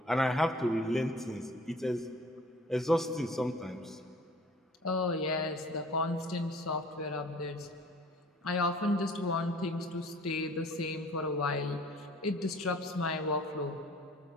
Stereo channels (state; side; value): normal; both; correlation 0.50